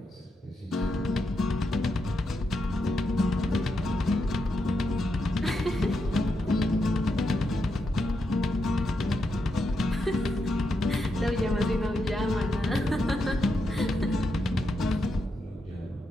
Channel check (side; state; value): both; normal; correlation 0.83